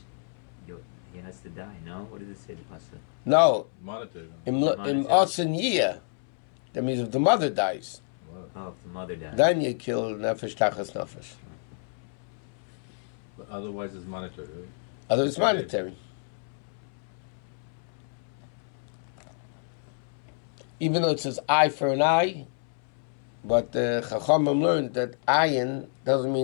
he has to die? No. What does it say? The pasuk? No. Monetary. In Osen Yiyah, that means if the mother dies. Oh, if the mother dies. Then you kill nefesh tachas nefesh. But otherwise, it's monetary. Right? Otherwise, it's monetary. Even though it says eye for an eye, but Chachamim learned that ayin doesn't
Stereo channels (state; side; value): silent; right; 59 dB below the other